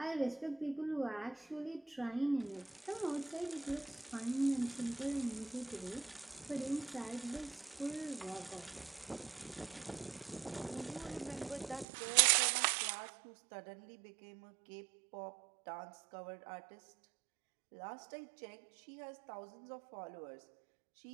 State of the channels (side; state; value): left; drops out; at 11.9 s